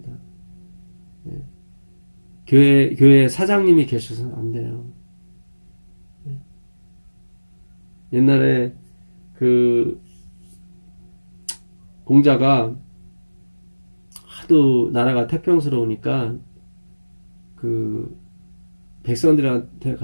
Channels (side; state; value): both; inverted; correlation -1.00